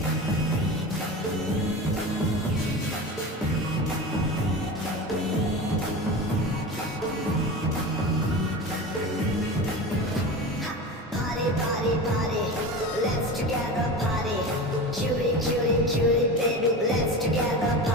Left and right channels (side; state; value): both; normal; correlation 0.29